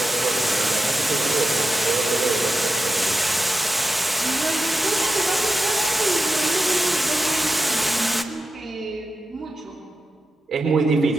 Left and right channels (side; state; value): both; normal; correlation 0.90